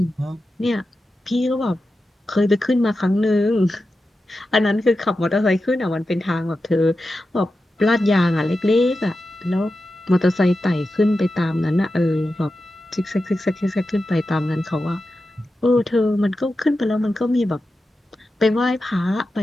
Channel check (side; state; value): both; normal; correlation 0.91